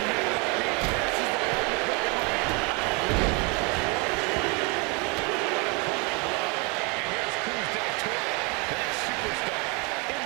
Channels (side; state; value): left; quieter; 31.0 dB